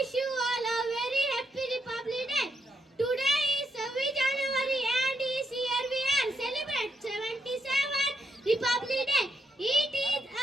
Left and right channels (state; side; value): normal; both; correlation 0.80